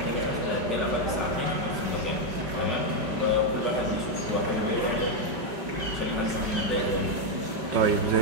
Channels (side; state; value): left; late; 5.0 ms